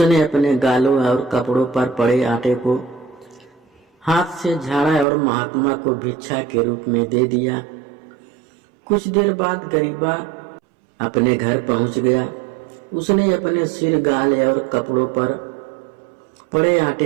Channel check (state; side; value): drops out; left; at 5.1 s